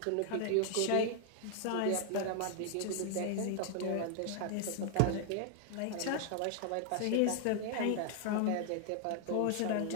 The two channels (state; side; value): different; both; correlation 0.00